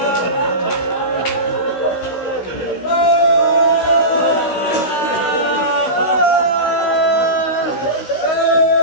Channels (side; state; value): right; late; 16 ms